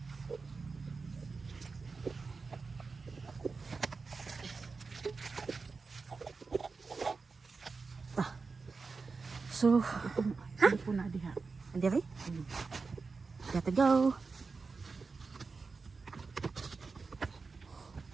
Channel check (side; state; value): left; quieter; 4.5 dB